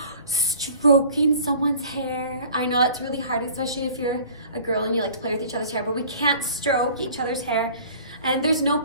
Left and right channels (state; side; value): inverted; both; correlation -0.48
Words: stroking someone's hair. I know that's really hard, especially if you're a girl and you like to play with each other's hair, but we can't stroke each other's hair. And there's no